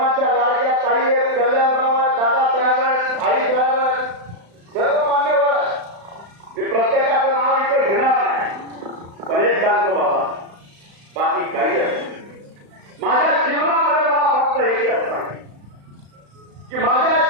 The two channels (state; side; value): late; left; 35 ms